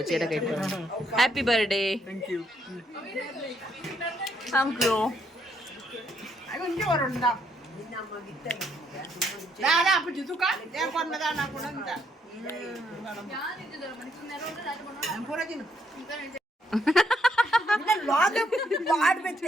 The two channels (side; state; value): both; normal; correlation 0.73